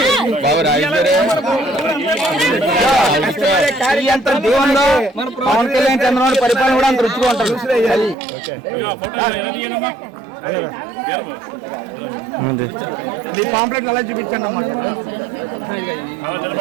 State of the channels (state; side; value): drops out; left; at 8.2 s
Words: పవన్ కళ్యాణ్ చంద్రబాబు పరిపాలన కూడా అంత రుచిగా ఉంటుంది. మీ పాంప్లెట్ అలా చూపించండి అమ్మా.